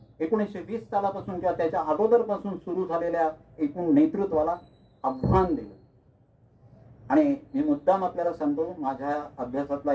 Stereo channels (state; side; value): identical; both; correlation 1.00